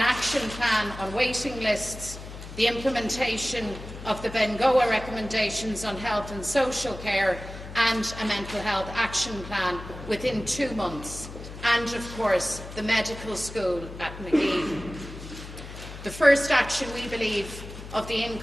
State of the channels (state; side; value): noise; left; hum, 12 dB below the sound